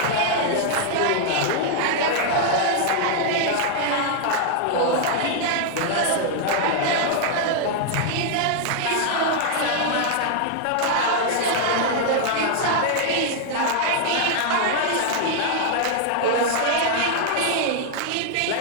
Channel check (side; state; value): both; different; correlation 0.00